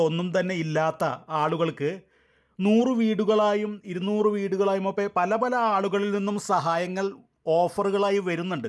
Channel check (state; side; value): identical; both; correlation 1.00